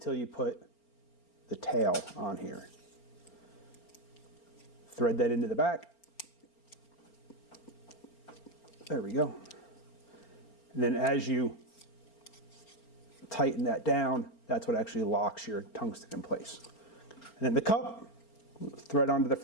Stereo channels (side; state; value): right; late; 4.4 ms